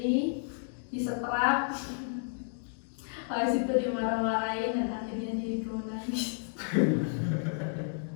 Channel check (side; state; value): right; silent; digital silence